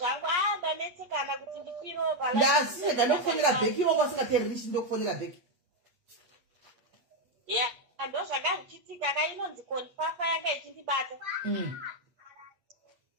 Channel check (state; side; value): late; left; 8.4 ms